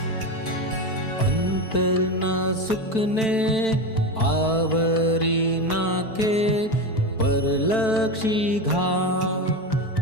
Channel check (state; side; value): late; right; 4.5 ms